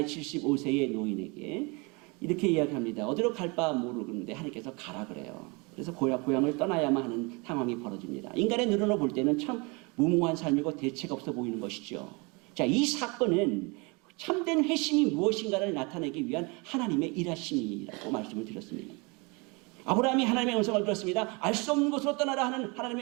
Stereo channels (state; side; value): quieter; left; 28.9 dB